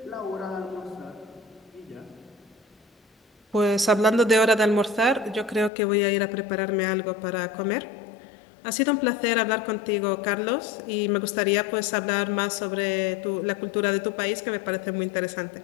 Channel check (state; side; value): drops out; right; at 5.7 s